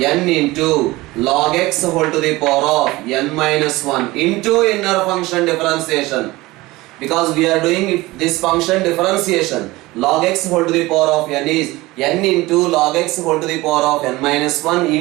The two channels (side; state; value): left; quieter; 20.0 dB